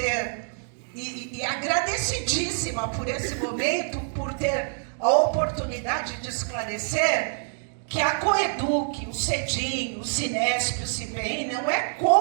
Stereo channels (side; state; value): left; silent; digital silence